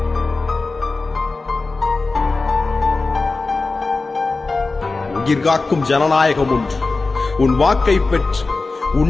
உயிர் காக்கும் ஜனநாயகம் ஒன்று. உன் வாக்கை பெற்று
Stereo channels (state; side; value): quieter; right; 3.7 dB